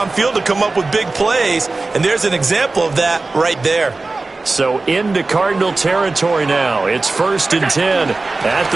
to come up with big plays, and there's an example of that right there. So into Cardinal territory now. It's 1st and 10 at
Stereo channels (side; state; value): left; quieter; 3.5 dB